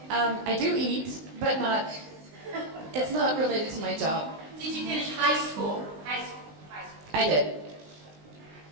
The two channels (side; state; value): left; late; 19 ms